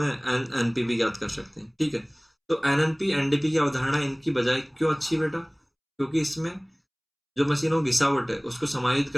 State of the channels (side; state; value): both; identical; correlation 1.00